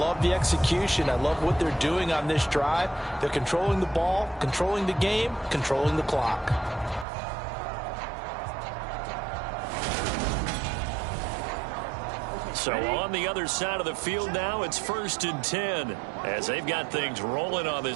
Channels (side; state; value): left; drops out; at 7.1 s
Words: the execution. I love what they're doing on this drive. They're controlling the ball, controlling the game, controlling the clock. So on the other side of the field now, it's 1st and 10 as they've got things rolling on